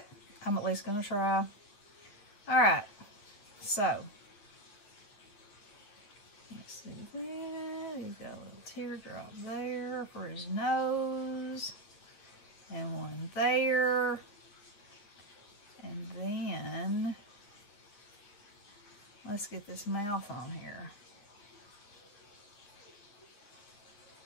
I'm at least gonna try. Alright, so let's see that. He's got a little teardrop there for his nose, and one there, and then let's get this mouth on here.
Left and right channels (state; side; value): late; right; 9.8 ms